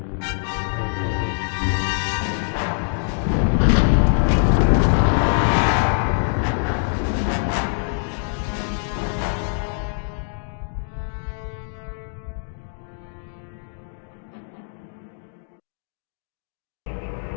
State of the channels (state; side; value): silent; right; 63 dB below the other